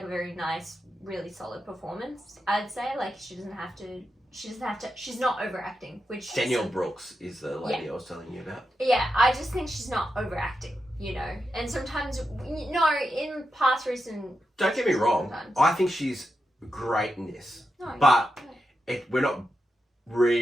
a very nice, really solid performance. I'd say like she doesn't have to. She's not overacting, which Danielle Brooks is the lady I was telling you about. Yeah, I just think she's not overacting, And sometimes, in past recent... Don't get me wrong. Sometimes. I think she's great in this. No, but we're not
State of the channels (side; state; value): both; normal; correlation 0.88